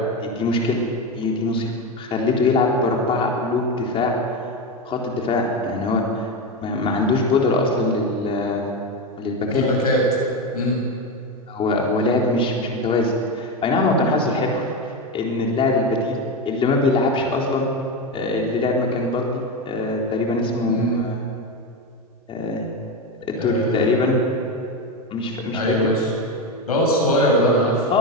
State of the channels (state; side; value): normal; both; correlation 0.15